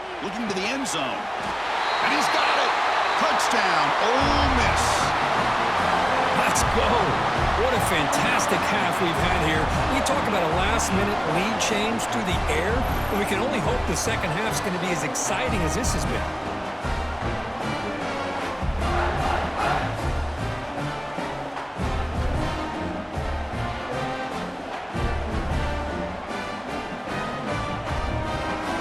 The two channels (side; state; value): both; identical; correlation 1.00